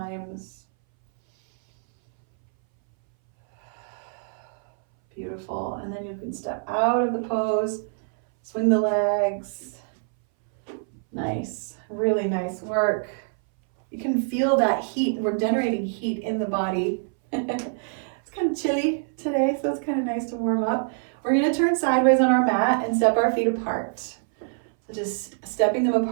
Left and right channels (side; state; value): left; silent; 60 dB below the other